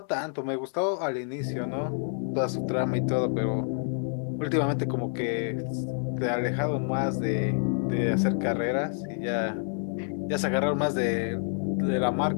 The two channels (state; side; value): silent; right; digital silence